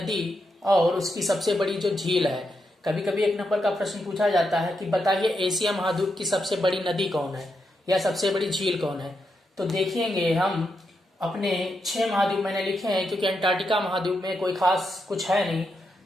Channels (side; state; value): both; normal; correlation 0.84